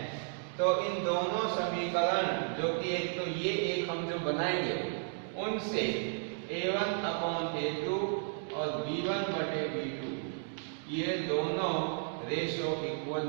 तो इन दोनों समीकरण, जो कि एक तो ये एक हम जो बनाएंगे, उनसे a1/a2 और b1/b2 ये दोनों रेशो इक्वल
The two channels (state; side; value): silent; left; digital silence